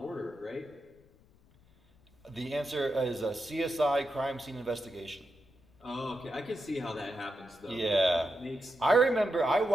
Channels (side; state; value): left; noise; rumble, 30 dB below the sound